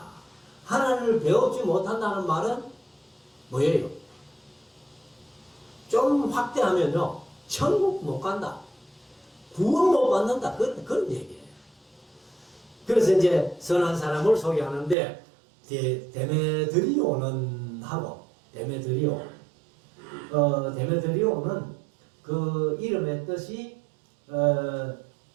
하나님을 배웁지 못한다는 말은 뭐예요? 좀 확대하면요, 천국 못 간다, 구원 못 받는다, 그런 얘기예요. 그래서 이제 선한 사람을 소개하는데 데메드리오는 하고 데메드리오는 그 이름의 뜻이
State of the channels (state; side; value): drops out; left; at 15.0 s